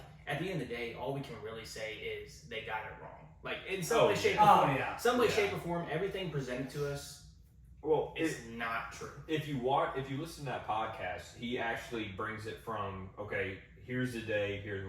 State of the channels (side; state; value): both; identical; correlation 1.00